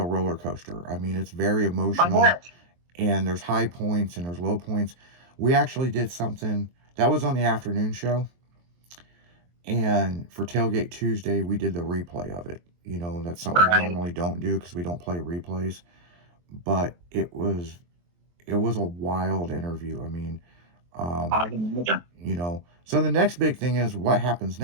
roller coaster. I mean, it's very emotional. And there's high points and there's low points. We actually did something that was on the afternoon show. And for Tailgate Tuesday, we did the replay of it. That's something we normally don't do because we don't play replays. But it was a wild interview. I mean, so the next big thing is what happens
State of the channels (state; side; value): late; left; 23 ms